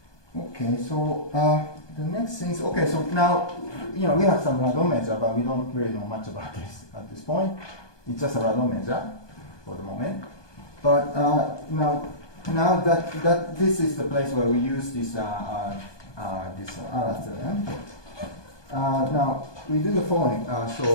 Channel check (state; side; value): late; right; 1.2 ms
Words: Okay, so the next thing is, okay, so now, we have some radon measure, but we don't really know much about this at this point. It's just a radon measure for the moment. But now that this is the place where we use this Allard theorem. Now we do the following.